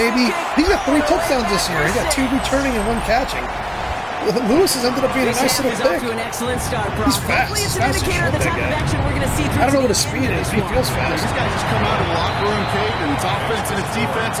He got 3 touchdowns this year. He got 2 returning and 1 catching. Lewis has ended up being a nice little pick. He's fast. He's fast as shit, that guy. I don't know what his speed is. He feels fast. These guys just come out of the locker room, Kate, and it's offense and it's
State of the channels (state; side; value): identical; both; correlation 1.00